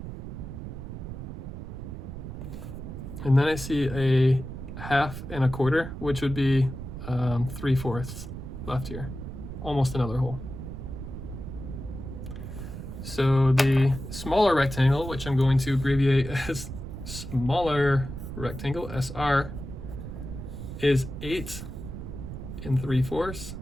And then I see a 1/2 and a 1/4, which would be 3/4 left here. Almost another hole. So the smaller rectangle, which I'm going to abbreviate as smaller rectangle, SR, is 8 3/4.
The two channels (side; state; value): right; noise; rumble, 9 dB below the sound